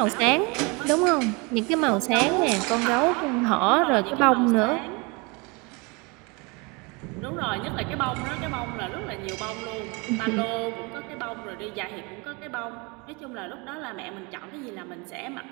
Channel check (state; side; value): quieter; left; 28.6 dB